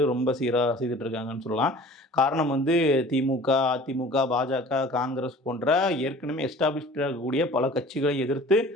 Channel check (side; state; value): both; normal; correlation 0.45